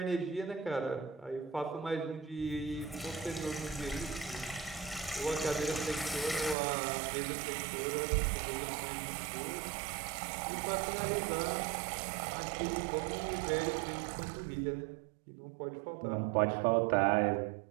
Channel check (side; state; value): left; drops out; at 6.6 s